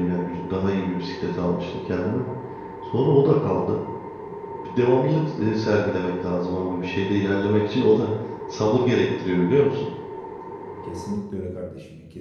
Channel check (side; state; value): both; identical; correlation 1.00